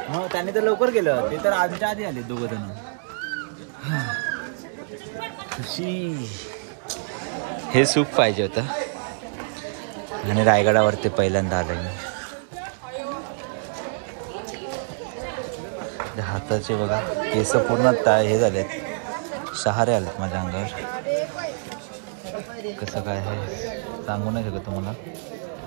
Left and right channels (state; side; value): silent; left; digital silence